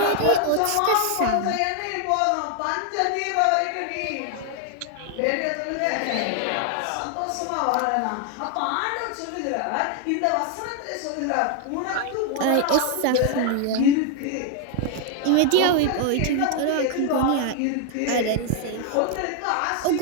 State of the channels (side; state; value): both; different; correlation 0.00